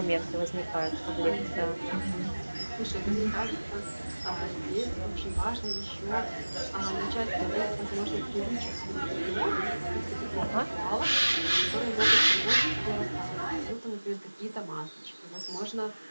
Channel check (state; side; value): inverted; both; correlation -1.00